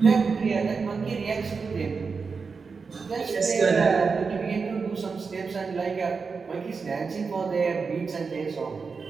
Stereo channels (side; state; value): left; quieter; 5.0 dB